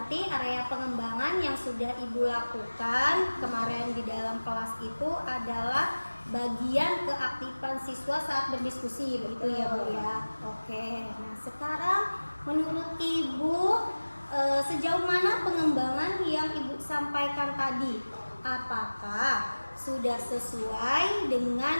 area pengembangan yang sudah Ibu lakukan kemarin di dalam kelas itu adalah bagian keaktifan siswa saat berdiskusi, begitu ya Bu ya. Oke. Nah, sekarang menurut Ibu sejauh mana pengembangan yang Ibu sampaikan tadi? Apakah sudah sesuai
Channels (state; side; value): inverted; both; correlation -1.00